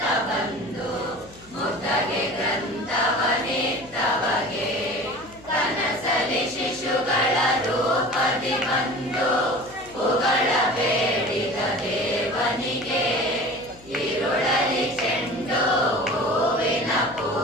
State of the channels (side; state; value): left; noise; hum, 23 dB below the sound